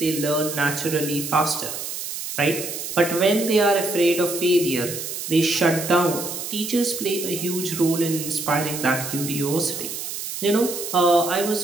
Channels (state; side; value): noise; right; hiss, 6 dB below the sound